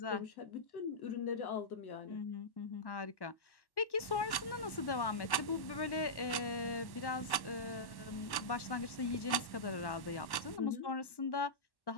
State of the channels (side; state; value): right; late; 1.1 ms